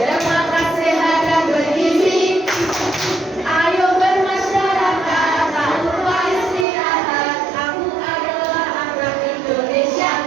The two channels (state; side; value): drops out; left; at 6.7 s